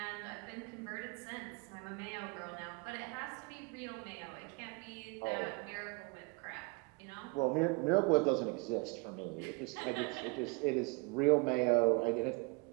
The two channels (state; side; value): quieter; left; 28.3 dB